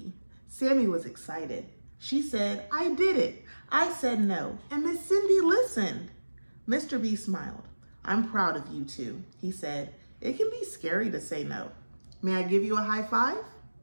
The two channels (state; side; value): inverted; both; correlation -1.00